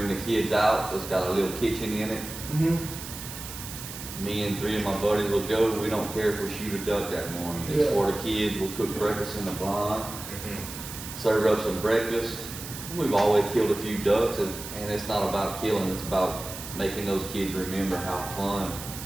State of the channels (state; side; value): noise; right; hiss, 10 dB below the sound